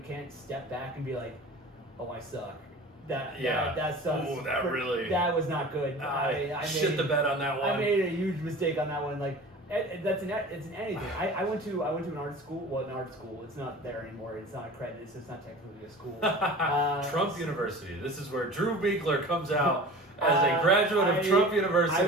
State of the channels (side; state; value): both; normal; correlation 0.39